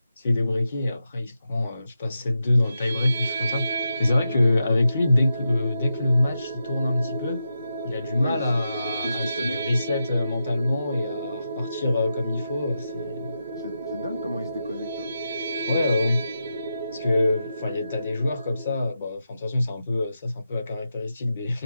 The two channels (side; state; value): both; inverted; correlation -0.87